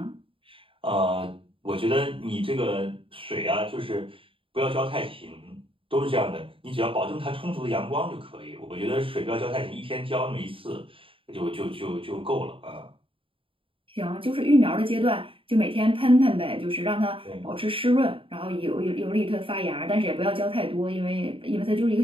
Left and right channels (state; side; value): late; left; 0.26 ms